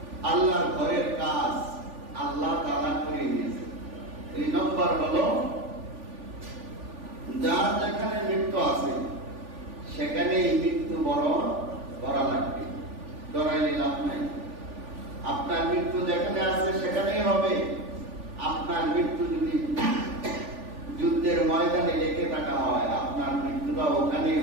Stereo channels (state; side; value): late; left; 3.5 ms